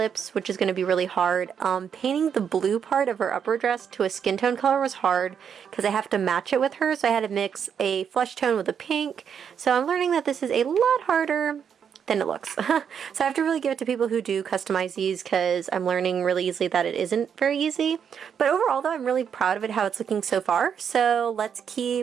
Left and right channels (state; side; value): quieter; left; 7.6 dB